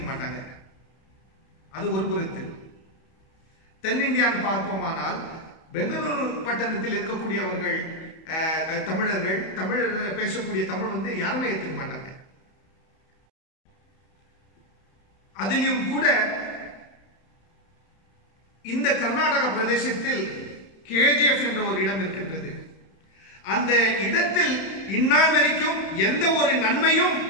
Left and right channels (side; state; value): right; late; 31 ms